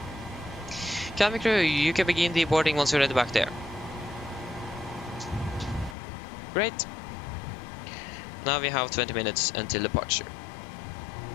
Cabin crew, you can begin the boarding once you're ready back there. Great. Now we have 20 minutes until departure.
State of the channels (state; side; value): drops out; right; at 6.0 s